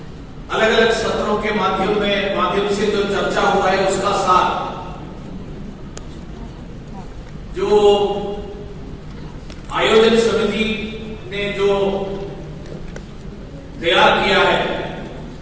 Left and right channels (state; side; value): identical; both; correlation 1.00